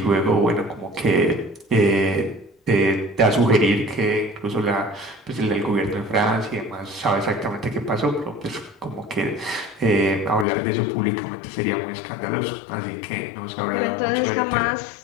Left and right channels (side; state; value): right; drops out; at 10.5 s